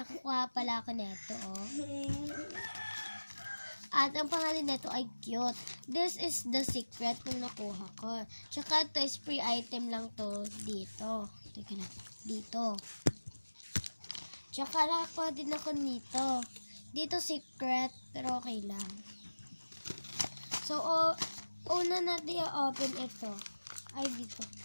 ako neto, oh. At ang pangalan nito ay cute. This is the secret nung nakuha ko. Tsaka ito is free item lang to dito. Teka na, dito. Tsaka nakakuha din ako nito. Dito secret, pero okay lang. So, una natin i-open ito. Ay, dito.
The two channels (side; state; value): both; inverted; correlation -1.00